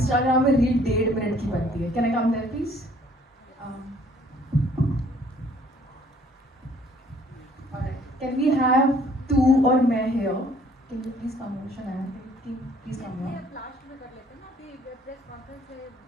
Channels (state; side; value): normal; both; correlation 0.59